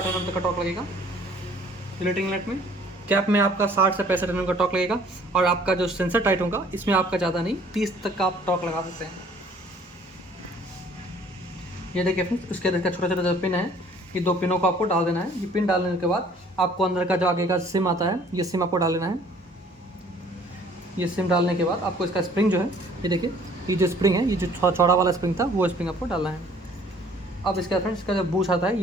mm तक का टॉर्क लगेगा। रिलेटिंग नेट में कैप में आपका 60 से 65 mm का टॉर्क लगेगा। और आपका जो सेंसर टाइट होगा इसमें आपका ज़्यादा नहीं 30 तक का आप टॉर्क लगा सकते हैं। ये देखिए फ्रेंड्स, उसके अंदर का छोटा छोटा जो पिन है, ये 2 पिनों को आपको डाल देना है। ये पिन डालने के बाद आपको अंदर का जो आगे का सिम आता है, ये सिम आपको डाल देना है। ये सिम डालने के बाद आपको इसका स्प्रिंग जो है, ये देखिए ये जो स्प्रिंग है, ये जो थोड़ा चौड़ा वाला स्प्रिंग था वो स्प्रिंग आपको डालना है। अब इसका फ्रेंड्स इसका जो बूश आता है,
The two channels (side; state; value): both; normal; correlation 0.56